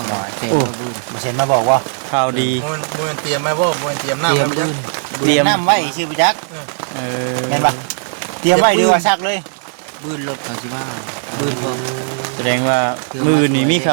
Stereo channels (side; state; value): left; silent; 66 dB below the other